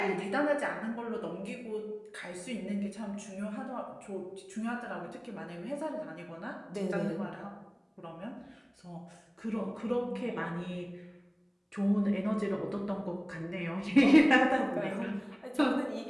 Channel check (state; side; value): identical; both; correlation 1.00